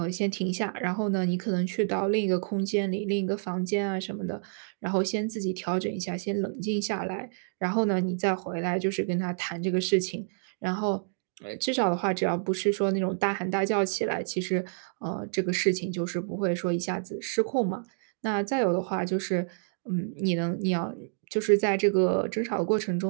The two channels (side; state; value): left; silent; digital silence